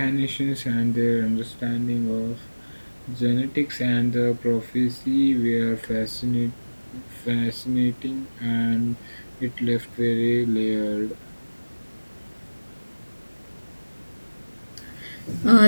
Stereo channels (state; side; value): inverted; both; correlation -1.00